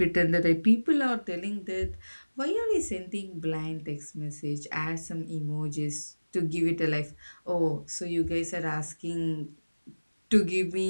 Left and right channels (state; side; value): inverted; both; correlation -1.00